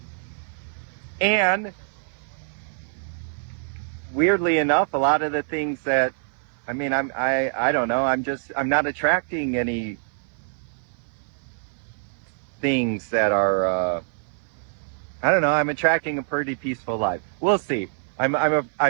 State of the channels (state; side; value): silent; left; 58 dB below the other